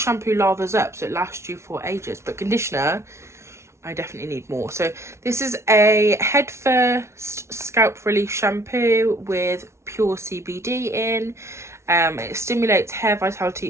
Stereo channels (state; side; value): late; left; 0.13 ms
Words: lathers up so it lasts you for ages, but conditioner, I definitely need more. So this is a Head First scalp relief shampoo with pure CBD in. It stimulates hair